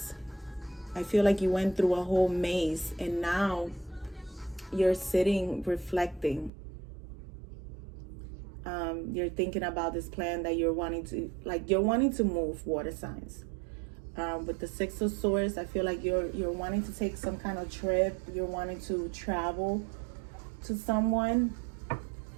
I feel like you went through a whole maze and now you're sitting reflecting. You're thinking about this plan that you're wanting to move, water signs. With the 6 of Swords, I feel like you're wanting to take some kind of trip. You're wanting to travel to someone.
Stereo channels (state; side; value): drops out; left; at 6.5 s